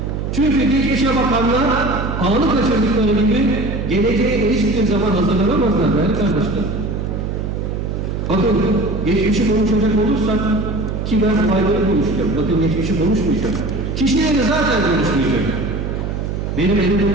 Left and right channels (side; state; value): right; noise; hum, 3 dB below the sound